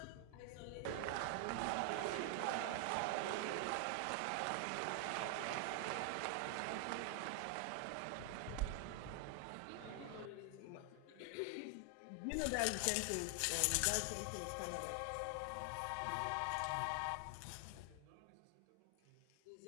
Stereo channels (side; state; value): both; different; correlation 0.00